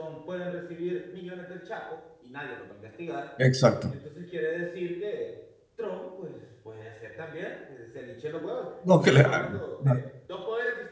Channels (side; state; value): both; identical; correlation 1.00